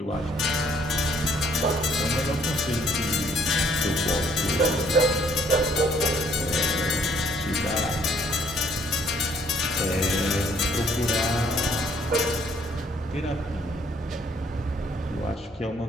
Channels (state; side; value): normal; both; correlation 0.64